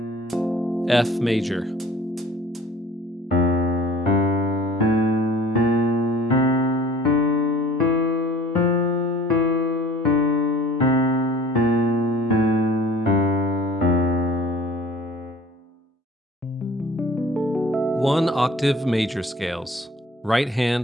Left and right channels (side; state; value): both; normal; correlation 0.47